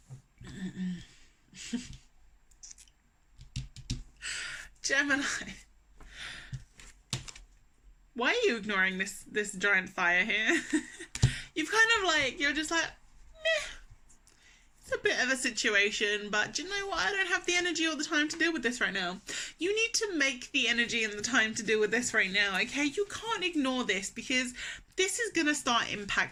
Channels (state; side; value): identical; both; correlation 1.00